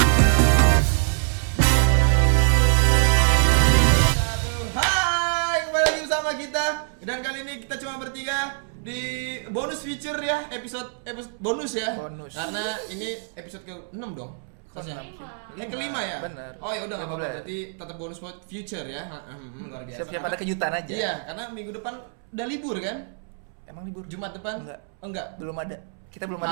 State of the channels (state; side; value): silent; left; 62 dB below the other